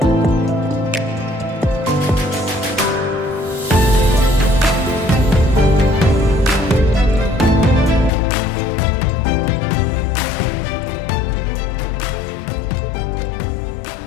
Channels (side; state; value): right; drops out; at 8.1 s